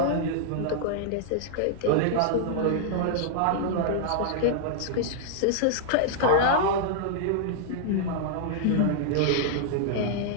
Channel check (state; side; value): different; both; correlation -0.01